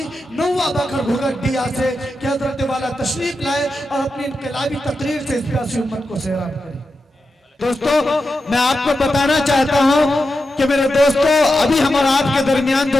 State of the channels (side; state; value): both; normal; correlation 0.89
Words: نوا بکر گھگٹیا سے کہ حضرت والا تشریف لائے اور اپنی انقلابی تقریر سے اس پیاسی امت کو سیراب کرے۔ دوستو، میں آپ کو بتانا چاہتا ہوں کہ میرے دوستو ابھی ہم اور آپ کے درمیان